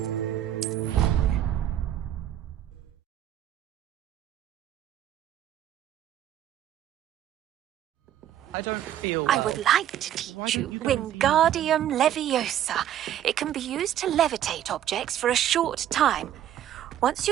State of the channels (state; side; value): quieter; left; 11.4 dB